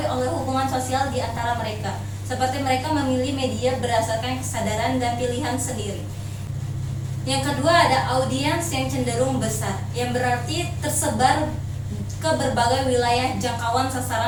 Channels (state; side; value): identical; both; correlation 1.00